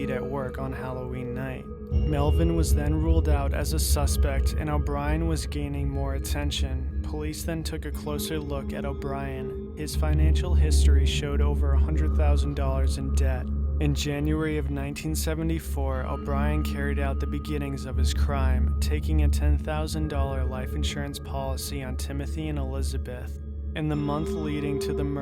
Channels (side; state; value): both; identical; correlation 1.00